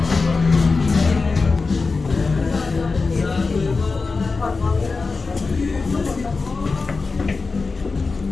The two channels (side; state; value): right; quieter; 4.2 dB